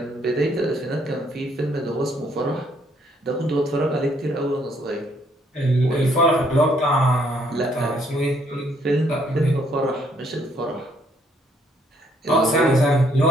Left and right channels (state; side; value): normal; both; correlation 0.68